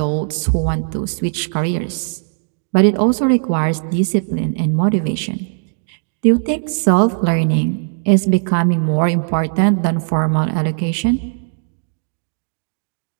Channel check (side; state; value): left; silent; digital silence